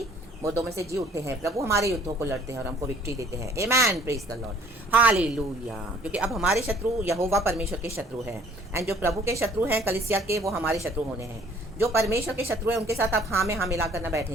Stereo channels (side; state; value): both; normal; correlation 0.57